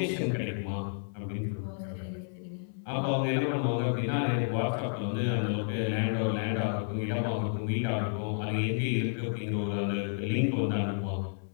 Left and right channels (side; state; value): right; silent; 57 dB below the other